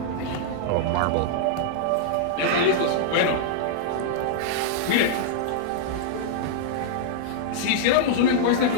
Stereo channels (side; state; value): both; different; correlation -0.02